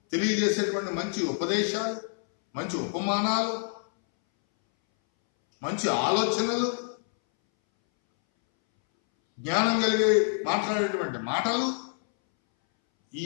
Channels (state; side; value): silent; right; 60 dB below the other